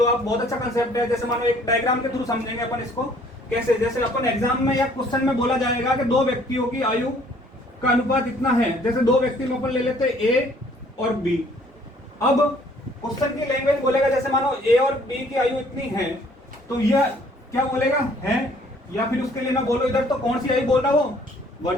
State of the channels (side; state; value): both; normal; correlation 0.59